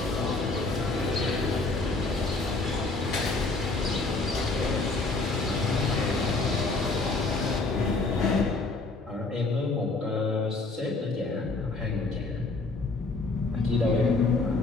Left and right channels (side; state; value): right; quieter; 3.4 dB